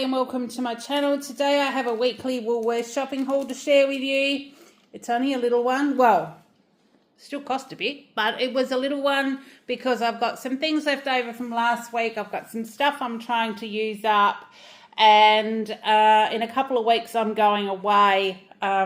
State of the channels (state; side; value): identical; both; correlation 1.00